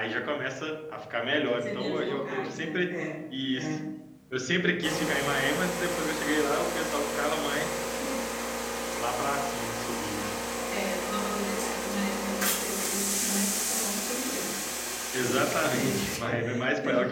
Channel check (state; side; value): identical; both; correlation 1.00